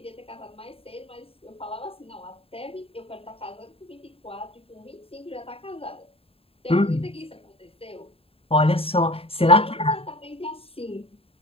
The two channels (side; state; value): right; late; 0.27 ms